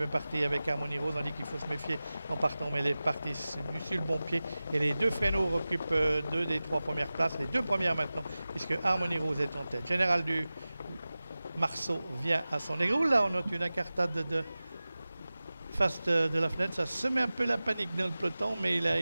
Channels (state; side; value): inverted; both; correlation -0.97